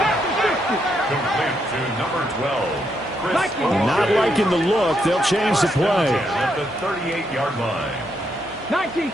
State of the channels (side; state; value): right; noise; hum, 24 dB below the sound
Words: Complete to number 12. Not liking the look. They'll change the play. At the 38-yard line. 19